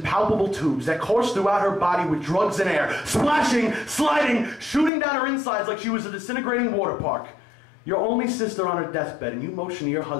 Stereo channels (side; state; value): right; drops out; at 4.9 s